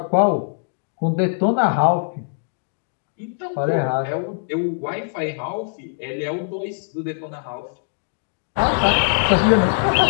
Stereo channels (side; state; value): right; silent; digital silence